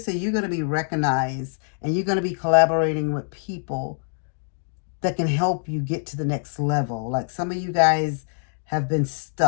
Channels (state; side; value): silent; right; digital silence